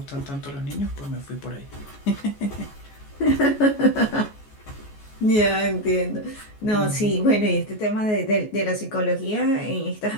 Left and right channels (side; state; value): right; late; 14 ms